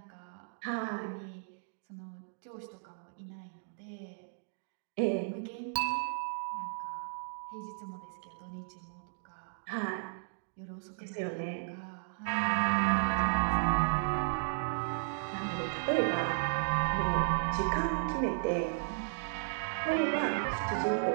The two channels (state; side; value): silent; left; digital silence